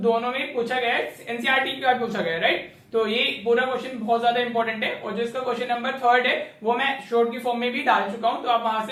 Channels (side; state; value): both; identical; correlation 1.00